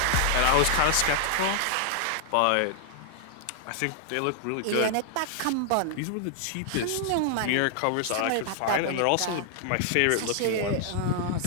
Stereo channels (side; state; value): both; different; correlation 0.00